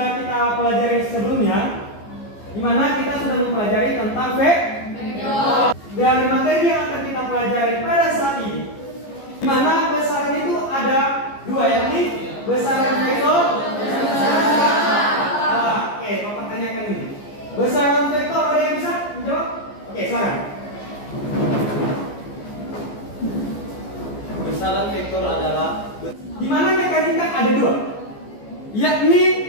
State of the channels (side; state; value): right; late; 14 ms